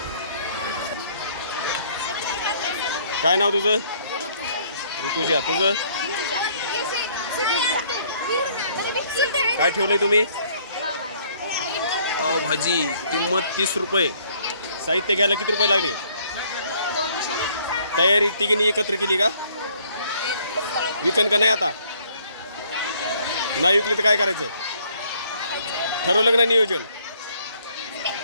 काय नाव तुझं? ऋतुजा. तुझं काय ठेवलंय तुम्ही? भाजी. किंमत 30 रुपये. साहित्य घ्यायला किती रुपये लागले? तयारी तिघींनी एकत्र केली का? विकन का नाही आता? नाही विकले तर काय करायचं? ठरवलं का नाही नियोजन?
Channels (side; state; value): both; inverted; correlation -0.63